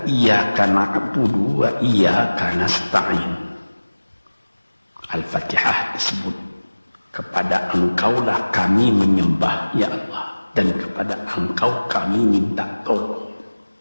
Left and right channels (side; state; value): both; inverted; correlation -1.00